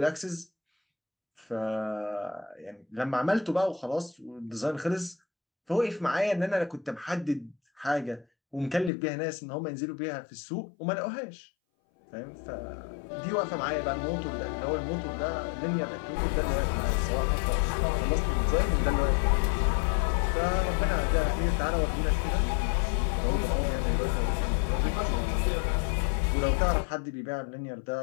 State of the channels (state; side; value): drops out; right; at 8.9 s